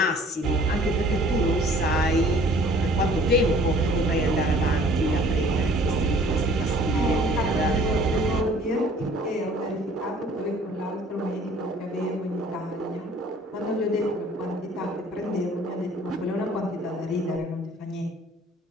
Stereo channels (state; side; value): normal; both; correlation 0.53